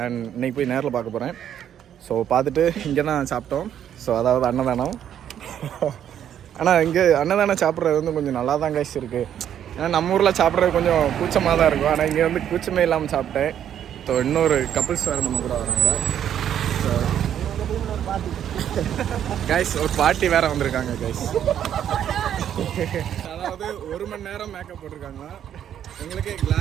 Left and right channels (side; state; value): left; quieter; 9.9 dB